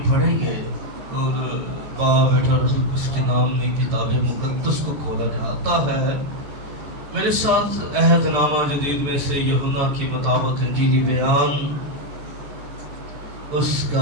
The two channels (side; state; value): left; late; 14 ms